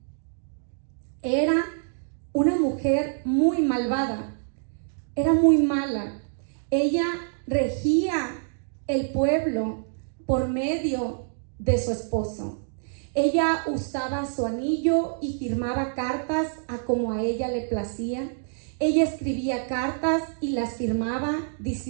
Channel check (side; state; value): left; silent; digital silence